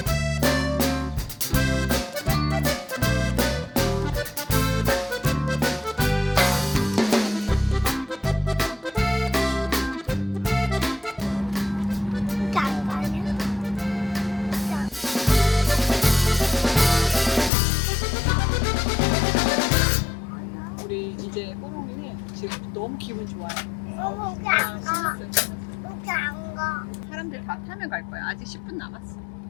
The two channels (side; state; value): right; drops out; at 17.5 s